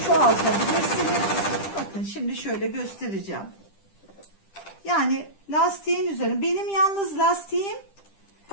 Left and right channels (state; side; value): late; right; 10 ms